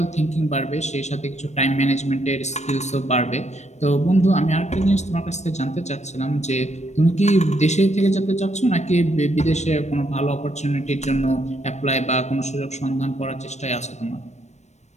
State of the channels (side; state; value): right; late; 0.33 ms